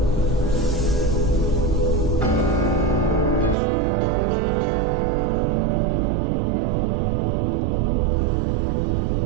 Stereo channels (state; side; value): drops out; left; at 3.6 s